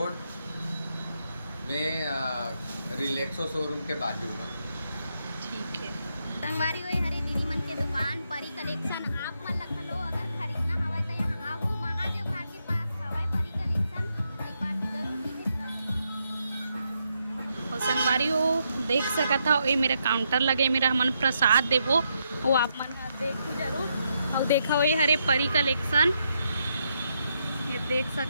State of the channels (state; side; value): inverted; both; correlation -0.80